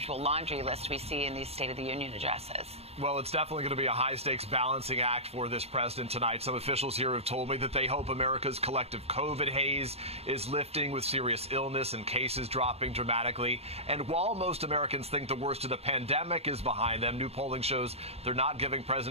laundry list we see in these State of the Union addresses? Well, it's definitely going to be a high-stakes balancing act for this president tonight. Some officials here have told me that they hope America's collective COVID haze is lifting with serious illness and cases dropping dramatically. And while most Americans think the worst of the pandemic is behind them, new polling shows they're not giving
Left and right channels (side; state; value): left; late; 0.30 ms